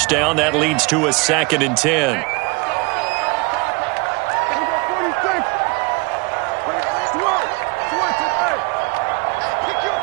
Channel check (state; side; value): quieter; left; 28.7 dB